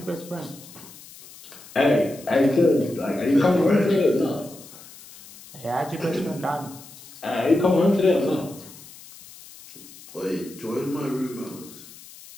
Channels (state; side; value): noise; left; hiss, 19 dB below the sound